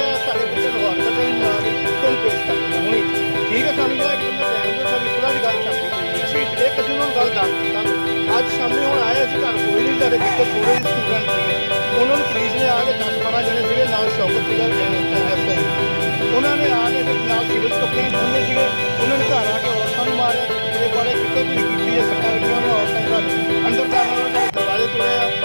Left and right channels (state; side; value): inverted; both; correlation -1.00